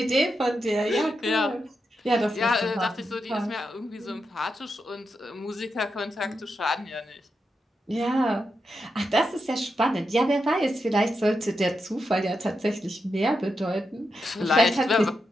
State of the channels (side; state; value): both; normal; correlation 0.86